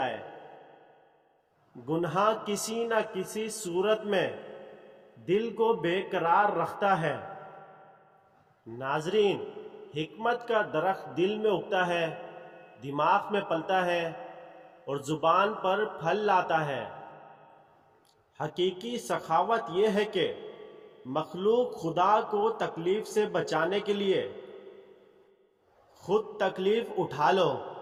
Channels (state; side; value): identical; both; correlation 1.00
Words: گناہ کسی نہ کسی صورت میں دل کو بے قرار رکھتا ہے۔ ناظرین، حکمت کا درخت دل میں اگتا ہے، دماغ میں پلتا ہے اور زبان پر پھل لاتا ہے۔ حقیقی سخاوت یہ ہے کہ مخلوق خدا کو تکلیف سے بچانے کے لیے خود تکلیف اٹھا لو۔